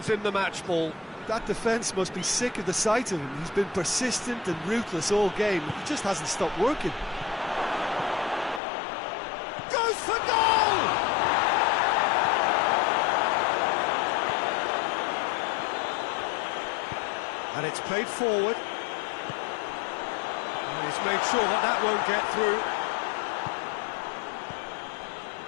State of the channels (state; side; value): drops out; right; at 8.6 s